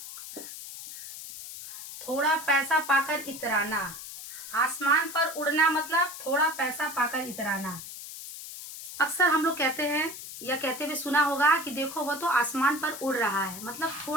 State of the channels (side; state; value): left; noise; hiss, 11 dB below the sound